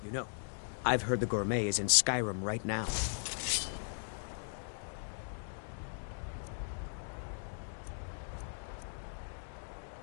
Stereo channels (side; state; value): right; silent; digital silence